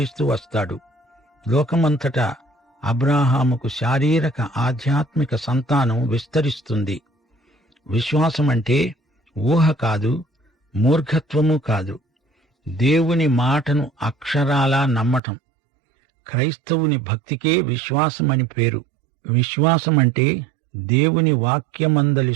వస్తాడు. లోకమంతటా అబ్రాహాముకు శారీరక ఆధ్యాత్మిక సంతానం విస్తరిస్తుంది. విశ్వాసమంటే ఊహ కాదు, మూర్ఖత్వము కాదు. దేవుని మాటను అక్షరాలా నమ్మటం. క్రైస్తవుని భక్తికే విశ్వాసమని పేరు. విశ్వాసమంటే దేవుని వాక్యమందలి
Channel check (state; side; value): drops out; left; at 15.2 s